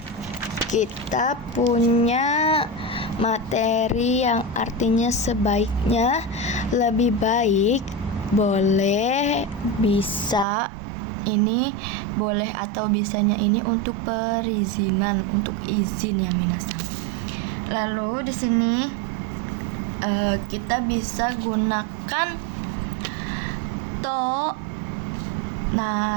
kita punya materi yang artinya sebaiknya, lebih baik, boleh, bisa. Ini boleh atau bisanya ini untuk perizinan, untuk izin ya minasang. Lalu di sini kita bisa gunakan to,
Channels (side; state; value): left; drops out; at 10.5 s